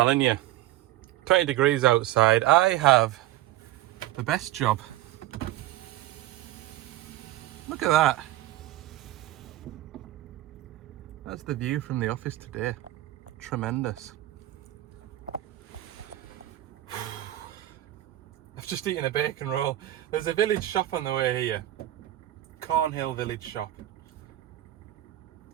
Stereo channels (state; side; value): quieter; left; 14.7 dB